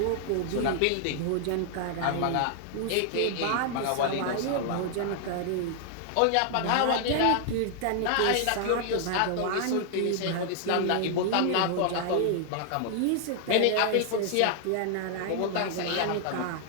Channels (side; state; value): both; different; correlation 0.00